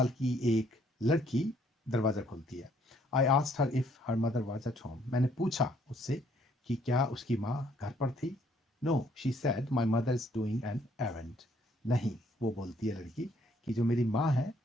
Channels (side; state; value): both; normal; correlation 0.65